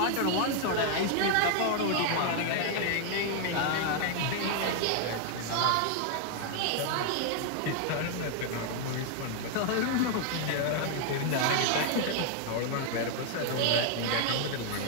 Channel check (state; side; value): different; both; correlation 0.00